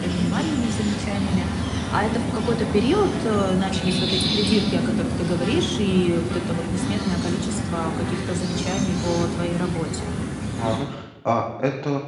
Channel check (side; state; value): both; identical; correlation 1.00